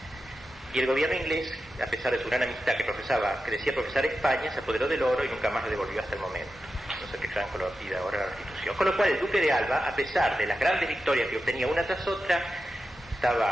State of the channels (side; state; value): both; normal; correlation 0.91